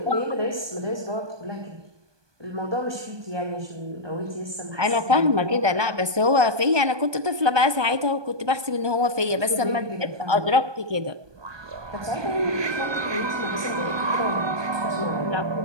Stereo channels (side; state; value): left; late; 1.2 ms